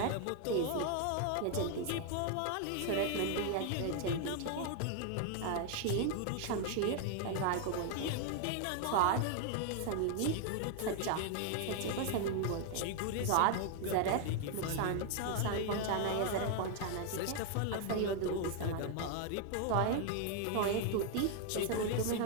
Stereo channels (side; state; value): both; different; correlation 0.00